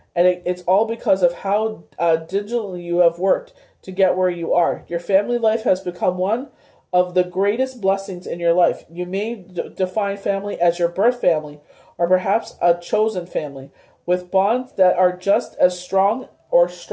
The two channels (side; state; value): both; identical; correlation 1.00